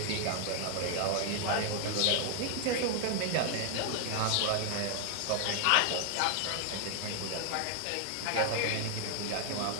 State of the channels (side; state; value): both; different; correlation 0.00